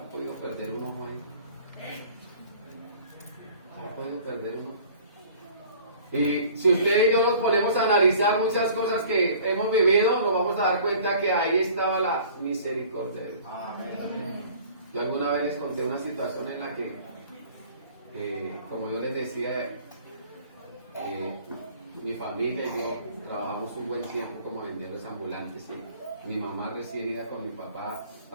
podido perder un ojo ahí. Había podido perder un ojo. Y si usted y yo nos ponemos a analizar muchas cosas que hemos vivido, nos vamos a dar cuenta que ahí estaba la misericordia de Dios. Yo alguna vez les conté una situación en la que, como yo les decía, mi familia y yo trabajamos un buen tiempo como vendedores ambulantes. Y mi mamá recién iba con mi papá,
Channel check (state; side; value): inverted; both; correlation -0.49